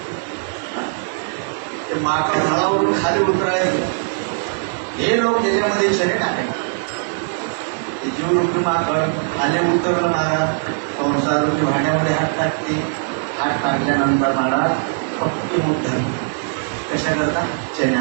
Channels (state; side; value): silent; left; 61 dB below the other